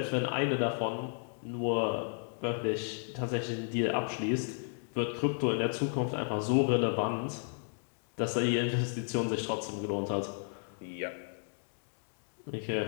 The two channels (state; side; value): silent; right; 55 dB below the other